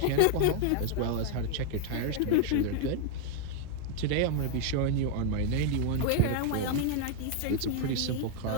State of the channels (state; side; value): different; both; correlation 0.00